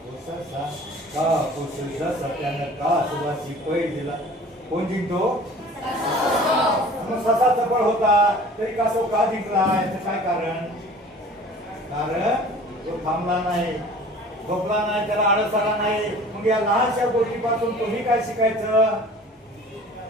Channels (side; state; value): both; normal; correlation 0.45